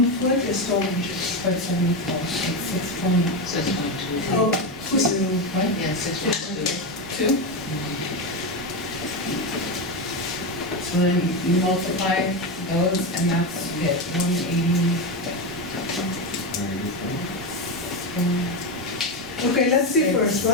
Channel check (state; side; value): normal; both; correlation 0.13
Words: foot is 12 inches. 74, it's 6.2. Oh, who's What? Yeah, 6.2. 2? So then you multiply those, and that's it, 180. Okay, let's see first,